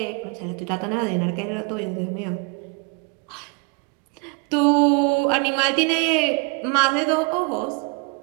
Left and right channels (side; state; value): left; quieter; 32.3 dB